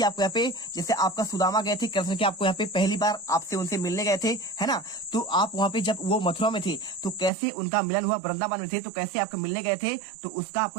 आपको यहाँ पे जैसे आपका सुदामा गए थे कृष्ण के, आपको यहाँ पे पहली बार आपसे उनसे मिलने गए थे, है ना। तो आप वहाँ पे जब वो मथुरा में थे तो कैसे उनका मिलन हुआ, वृंदावन में थे तो कैसे आपका मिलने गए थे, तो उसका आपको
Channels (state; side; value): drops out; left; at 7.3 s